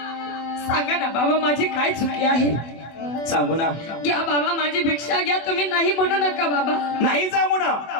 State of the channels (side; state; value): right; late; 24 ms